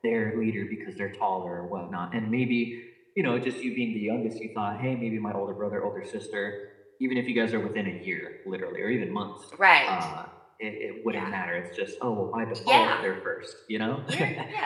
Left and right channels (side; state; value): both; identical; correlation 1.00